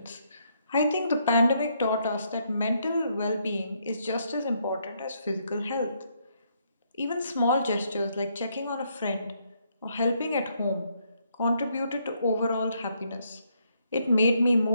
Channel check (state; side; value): inverted; both; correlation -0.74